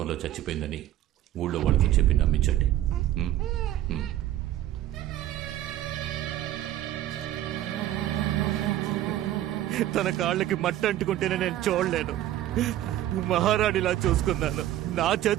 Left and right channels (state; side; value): quieter; left; 13.2 dB